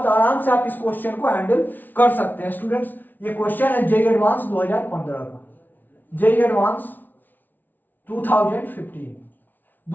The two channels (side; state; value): right; late; 0.085 ms